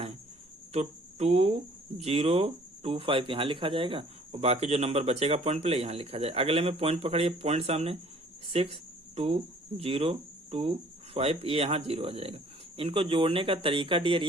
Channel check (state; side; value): normal; both; correlation 0.55